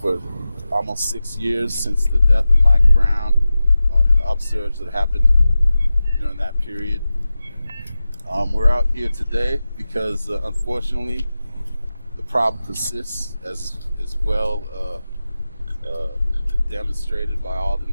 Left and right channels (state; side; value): inverted; both; correlation -0.94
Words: almost 6 years since the death of Mike Brown and the upsurge that happened during that period. We're out here today because, unfortunately, the problem persists as well. Demonstrated by all the